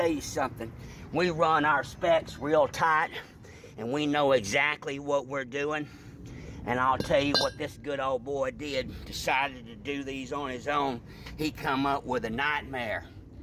you something. We run our specs real tight, and we know exactly what we're doing. And I'll tell you what this good old boy did. Decided to do these on his own. He come up with a nightmare.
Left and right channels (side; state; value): both; identical; correlation 1.00